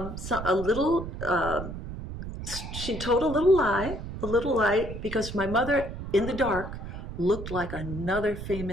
little lie, because my mother, in the dark, looked like another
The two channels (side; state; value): right; noise; rumble, 8 dB below the sound